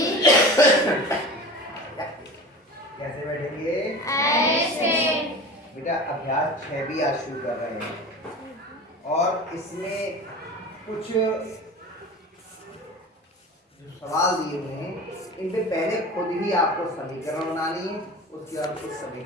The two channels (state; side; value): normal; both; correlation 0.34